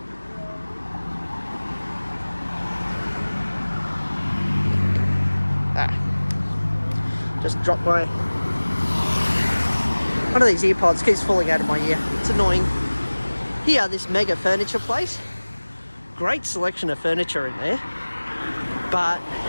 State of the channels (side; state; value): both; inverted; correlation -1.00